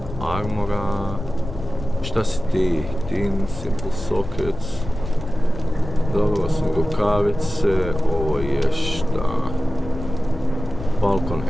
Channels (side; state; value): left; noise; rumble, 10 dB below the sound